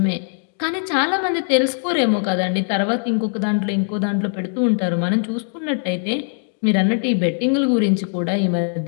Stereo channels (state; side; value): silent; right; 60 dB below the other